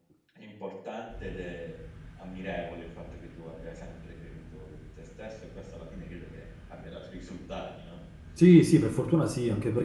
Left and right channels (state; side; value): identical; both; correlation 1.00